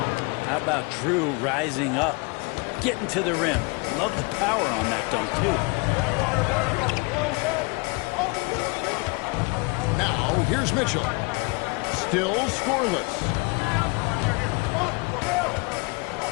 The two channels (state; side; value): quieter; right; 29.1 dB